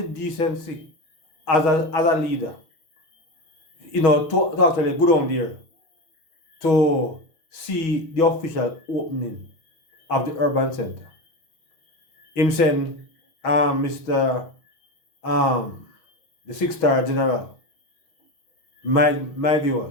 decency as a leader, to actually go down there to see the official opening of the urban center. Him saying, Mr. The 6-star general, my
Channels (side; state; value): right; late; 6.2 ms